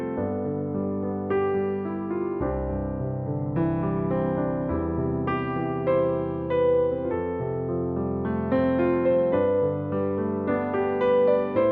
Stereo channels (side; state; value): both; identical; correlation 1.00